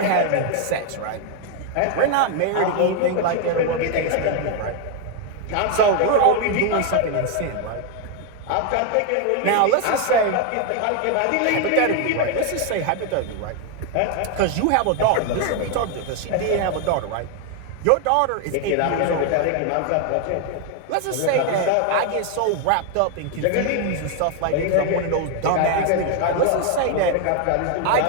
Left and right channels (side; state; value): both; different; correlation 0.00